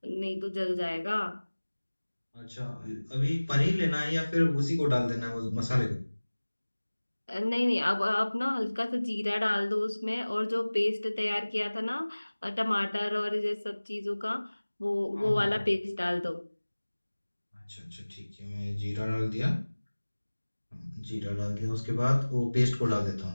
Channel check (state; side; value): inverted; both; correlation -1.00